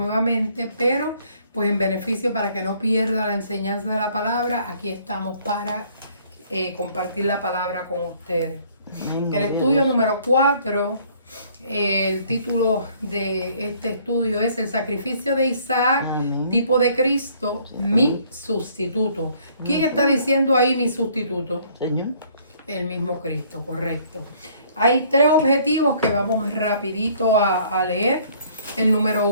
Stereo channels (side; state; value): both; inverted; correlation -0.60